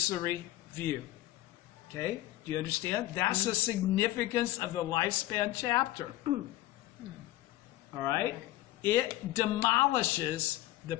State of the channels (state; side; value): quieter; right; 16.0 dB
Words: view. Okay? Do you understand? That's the significance of the lifespan chapter. All right? It demolishes the